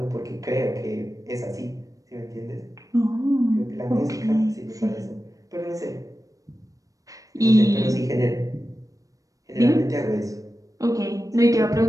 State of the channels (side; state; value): left; late; 0.16 ms